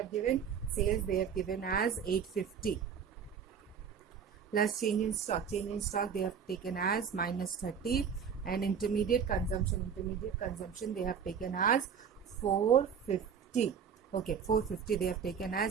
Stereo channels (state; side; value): quieter; left; 7.2 dB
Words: given. Sales they have given as 850 plus change in stock. Change in stock they have taken as minus 30, and intermediate consumption they have taken as 450. Okay, 450 they have taken